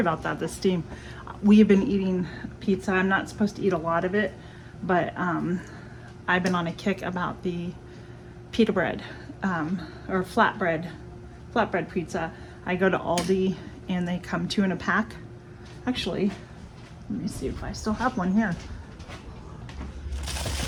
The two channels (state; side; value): identical; both; correlation 1.00